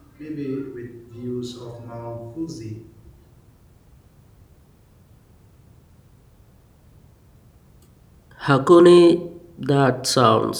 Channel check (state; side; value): identical; both; correlation 1.00